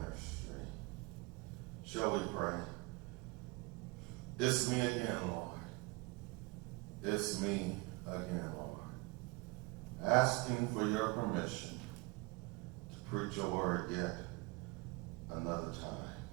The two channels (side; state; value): left; quieter; 25.7 dB